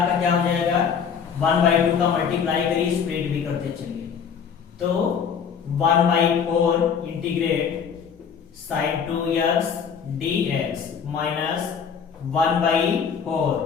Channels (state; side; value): quieter; right; 6.9 dB